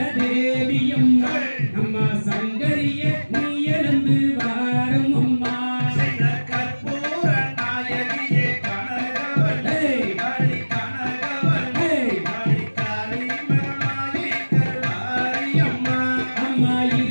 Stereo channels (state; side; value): inverted; both; correlation -1.00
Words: தேவியம்மா நம்ம சங்கரிய நீ எழுந்து வாரும் அம்மா செய்த கற்பூர நாயகியே கனகவல்லே காளி கனகவல்லே காளி காளி மகமாயி கருமாரியம்மா அம்மா